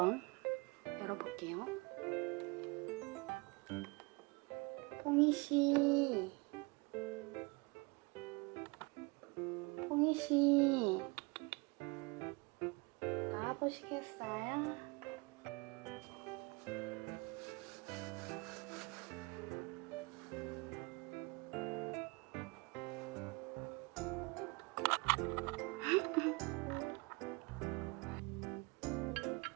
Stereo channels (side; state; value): left; quieter; 27.2 dB